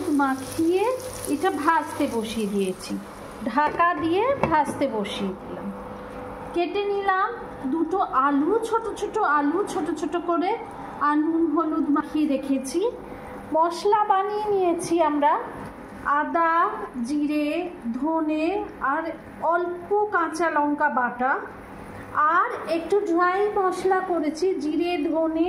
মাখিয়ে এটা ভাজতে বসিয়ে দিয়েছি, ঢাকা দিয়ে ভাজতে বসিয়ে দিলাম। কেটে নিলাম দুটো আলু, ছোট ছোট আলু ছোট ছোট করে, আর নুন হলুদ মাখিয়ে রেখেছি। মশলা বানিয়ে নিয়েছি আমরা, আদা, জিরে, ধনে আর অল্প কাঁচা লঙ্কা বাটা, আর একটু ড্রাই মশলা করেছি, জিরে ধনে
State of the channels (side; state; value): both; identical; correlation 1.00